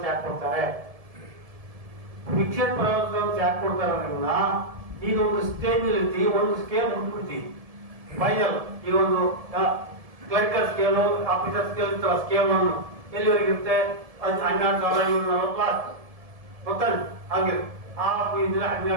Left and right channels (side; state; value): left; late; 1.7 ms